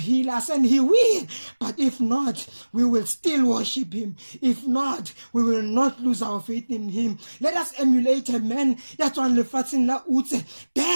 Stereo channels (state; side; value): inverted; both; correlation -1.00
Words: us, and he will. But if not, we will still worship him. If not, we will not lose our faith in him. Let us emulate a man